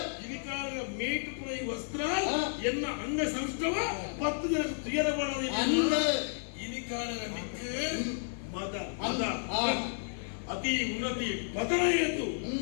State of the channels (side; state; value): right; silent; 56 dB below the other